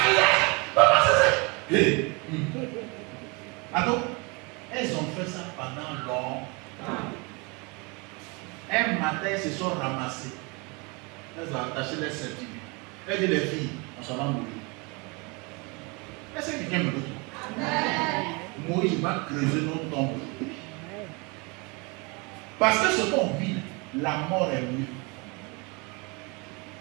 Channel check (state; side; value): quieter; left; 29.2 dB